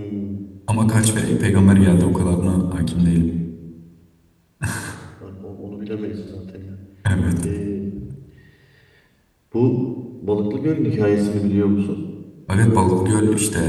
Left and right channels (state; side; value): identical; both; correlation 1.00